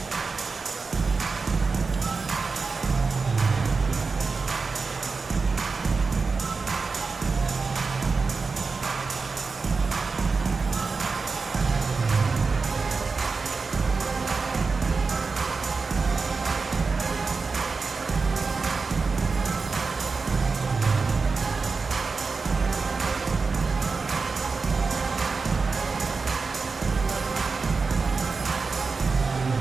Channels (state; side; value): quieter; left; 4.4 dB